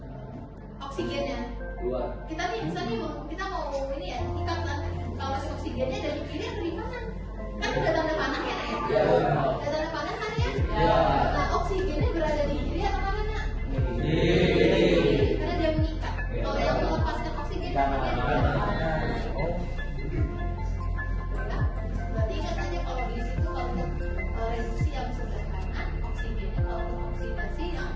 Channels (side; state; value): both; identical; correlation 1.00